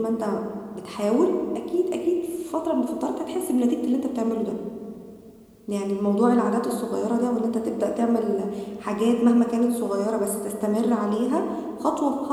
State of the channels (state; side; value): identical; both; correlation 1.00